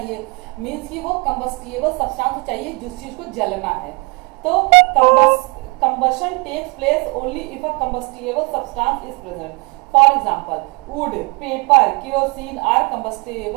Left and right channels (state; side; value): quieter; left; 30.6 dB